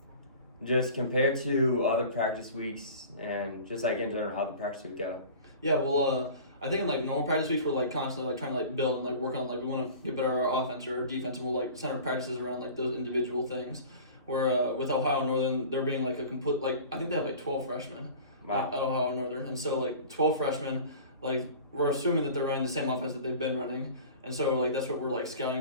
just compared to other practice weeks and just like in general how the practice week go. Yeah, well, I think in like normal practice weeks we're like constantly like trying to like build and like work on like we want to get better at our offense or our defense, and we'll like center practices around like those individual things. Where with Ohio Northern, they're being like a complete like I think they have like 12 freshmen at Ohio Northern, and so like 12 freshmen, like we're assuming that they're running the same offense that they've been running, and so like that's what we're like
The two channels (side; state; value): both; inverted; correlation -0.41